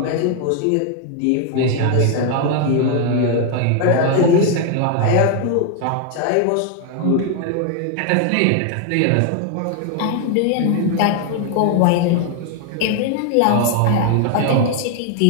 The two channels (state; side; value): different; both; correlation 0.00